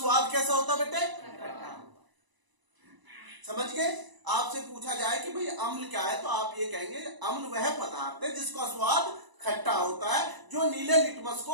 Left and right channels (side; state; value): left; late; 1.0 ms